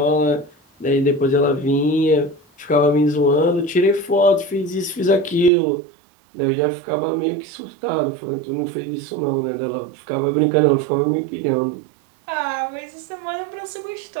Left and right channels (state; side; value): drops out; left; at 5.5 s